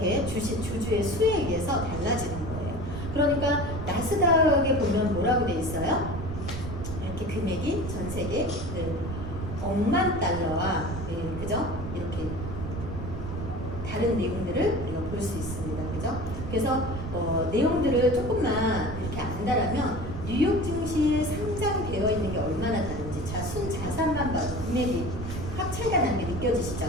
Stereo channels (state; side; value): noise; right; rumble, 6 dB below the sound